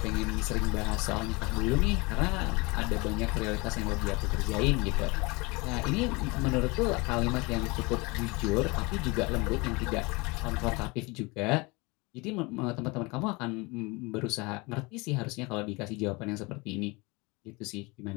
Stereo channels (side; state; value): right; quieter; 26.0 dB